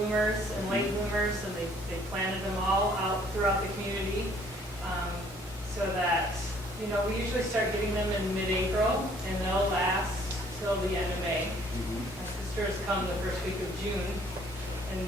and late bloomers, and they planted them all out throughout the community so that, you know, we usually start getting them in mid-April, and they'll last till the end of May. My sister has come the first week of June and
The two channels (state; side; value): normal; both; correlation 0.60